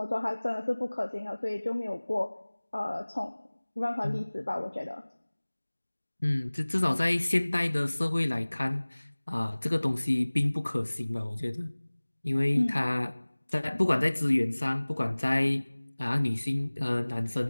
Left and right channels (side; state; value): both; inverted; correlation -1.00